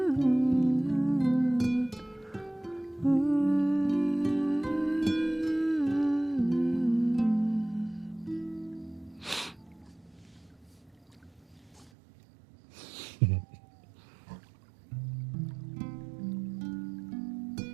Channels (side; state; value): left; drops out; at 11.9 s